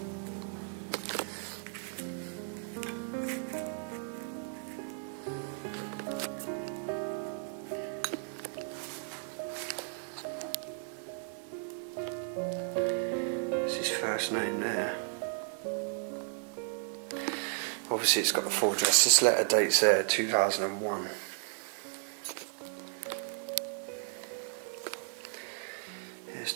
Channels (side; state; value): left; silent; digital silence